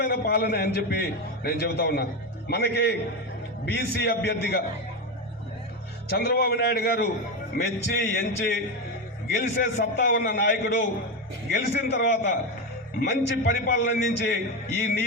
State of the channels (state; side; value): normal; both; correlation 0.14